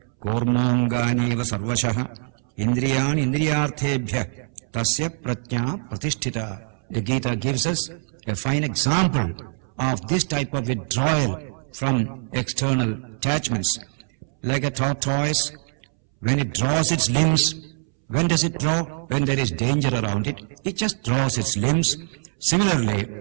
kurmonganiva sarvashah indriyani indriyarthebhya tasya pratnya pratisthita. The Gita gives us a fine example of this type of withdrawal from external attachments. Like a tortoise, when it draws its limbs, when does it draw? When there is danger around it, it just draws its limbs. Similarly,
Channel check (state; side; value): silent; left; 63 dB below the other